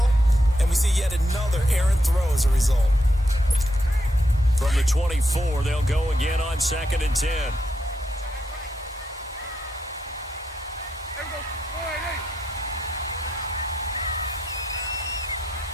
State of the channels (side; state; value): both; normal; correlation 0.81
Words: and we see yet another errant throw as a result. From the 24, they'll go again on 2nd and 10.